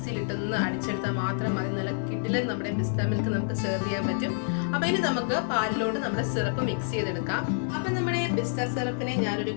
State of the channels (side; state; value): right; silent; 59 dB below the other